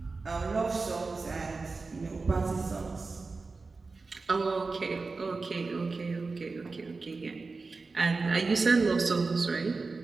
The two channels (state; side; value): quieter; left; 4.0 dB